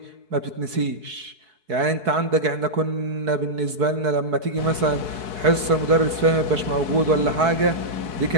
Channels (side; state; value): left; late; 4.6 ms